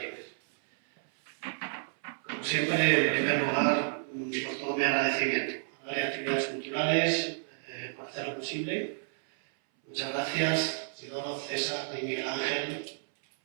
Como siempre, en primer lugar, por todo mi agradecimiento a las actividades culturales, por hacer lo posible. Muchas gracias, Isidoro, César y Miguel Ángel,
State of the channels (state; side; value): silent; left; 57 dB below the other